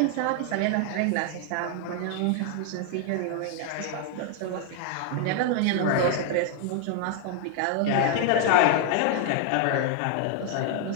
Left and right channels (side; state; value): both; different; correlation 0.00